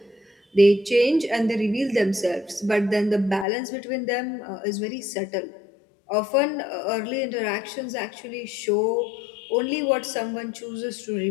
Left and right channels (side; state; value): right; drops out; at 3.5 s